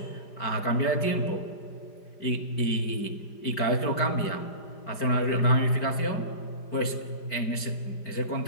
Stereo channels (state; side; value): late; right; 5.0 ms